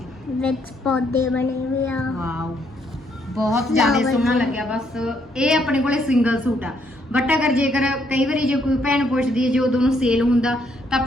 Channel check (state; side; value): normal; both; correlation 0.72